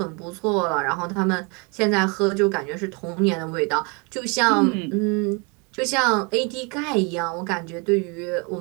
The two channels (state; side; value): quieter; left; 31.4 dB